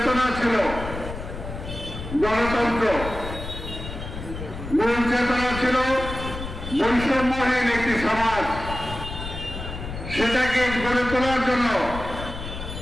ছিল গণতন্ত্র, মূল চেতনা ছিল বৈষম্যহীন একটি সমাজ, সেটাকে গড়ে তোলার জন্য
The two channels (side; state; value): left; noise; rumble, 9 dB below the sound